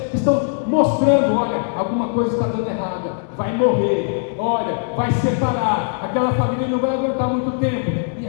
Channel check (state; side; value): silent; right; 66 dB below the other